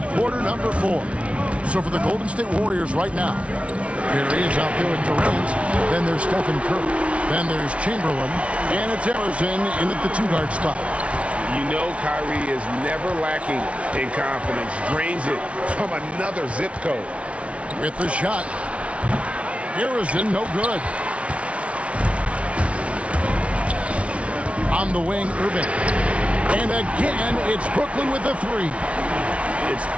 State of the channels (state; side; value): late; left; 0.062 ms